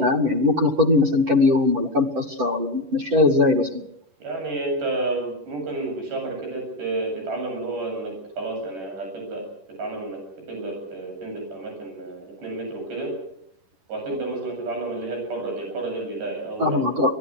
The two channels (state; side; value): late; left; 10 ms